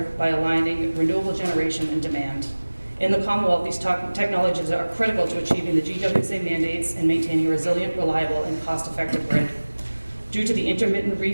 by aligning renewable generation and demand. In the Commonwealth, these technologies are critical to achieving the GWSA mandates and maintaining a resilient, reliable, and cost-effective grid. Due to the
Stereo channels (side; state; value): both; inverted; correlation -1.00